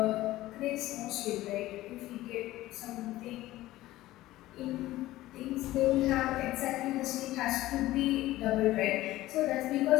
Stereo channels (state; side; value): quieter; right; 16.3 dB